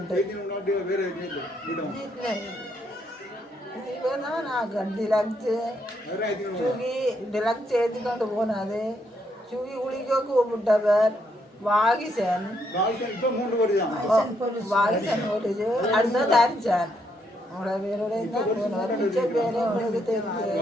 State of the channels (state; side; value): normal; both; correlation 0.75